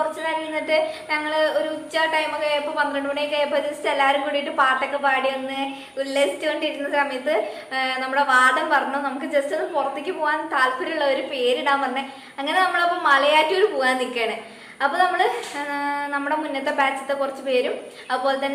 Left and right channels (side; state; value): both; identical; correlation 1.00